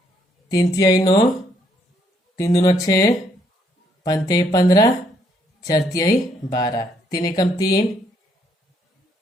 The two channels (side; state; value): both; normal; correlation 0.70